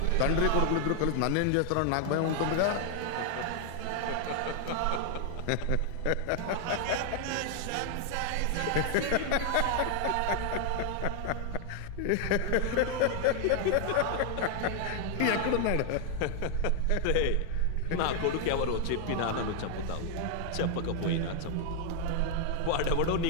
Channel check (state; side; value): different; both; correlation 0.00